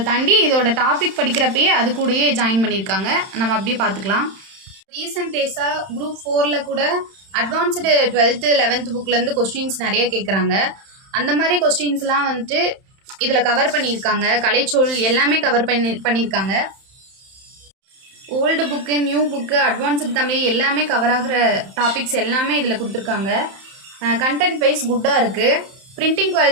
தாண்டி இதோட டாபிக் படிக்கிறப்பயே அது கூடயே ஜாயின் பண்ணியிருக்காங்க. நம்ம அப்படியே பார்த்துக்கலாம். ரீசெண்ட் டேஸாக குரூப் 4ல் கூட அட்வான்ஸ்டு 12th 11th புக்லேருந்து கொஸ்டின்ஸ் நிறைய கேட்குறாங்க. அந்த மாதிரி கொஸ்டின்ஸ்லாம் வந்துட்டு இதில் கவர் பண்ணியிருக்காங்க. கலைச்சொல் எல்லாமே கவர் பண்ணியிருக்காங்க. Old book, new book, advanced Tamil எல்லாமே கவர் ஆகிற டாபிக்ஸ் எல்லாமே இதில் கொடுத்துருக்காங்க. கண்டென்ட் வைஸ் குட்டாக இருக்குது. பிரிண்டிங்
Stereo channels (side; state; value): left; late; 31 ms